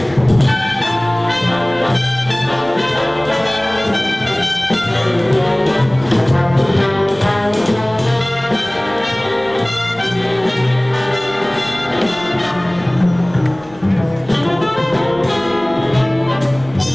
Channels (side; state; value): left; noise; rumble, 23 dB below the sound